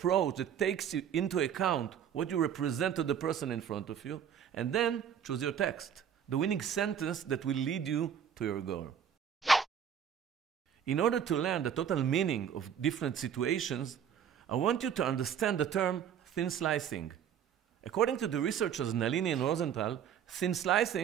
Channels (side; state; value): left; quieter; 8.5 dB